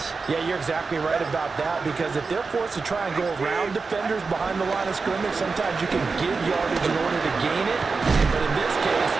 Yeah, you're exactly right about that because if they're forced to try and go around defenders behind the line of scrimmage, sometimes you can give yardage in order to gain it. But in this case,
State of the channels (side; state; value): left; quieter; 4.5 dB